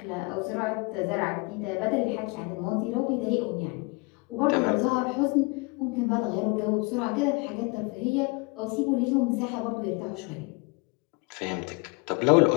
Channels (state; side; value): quieter; right; 28.3 dB